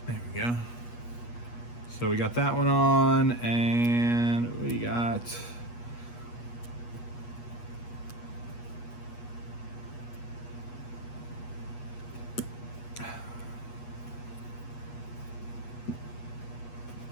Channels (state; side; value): late; right; 8.3 ms